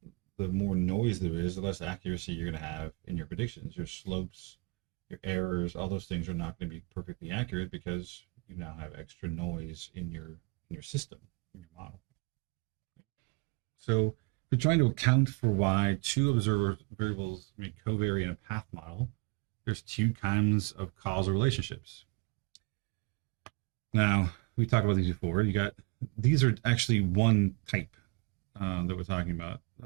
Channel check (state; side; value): quieter; left; 30.0 dB